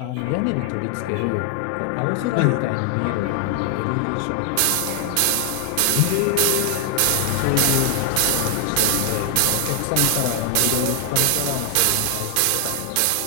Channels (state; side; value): different; both; correlation 0.00